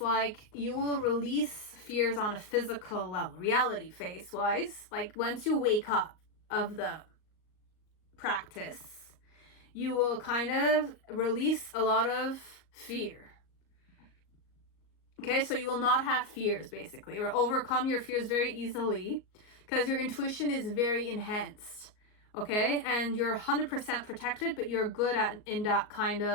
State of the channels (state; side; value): late; right; 38 ms